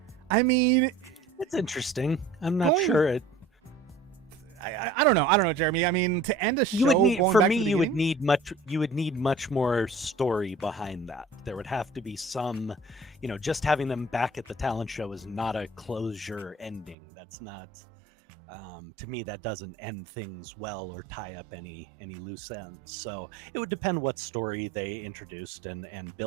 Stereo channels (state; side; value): drops out; left; at 16.9 s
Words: I mean, it's interesting. I'm not sure it. I don't know, Jeremy. I mean, to end a show, You would need, going for back me, to the you would beginning- need much more story behind that. There would have to be some, just having them back at the talent show is not a closure ending. That's not, to me, that doesn't end things well or tie up any loose ends. So it would depend what story they introduced and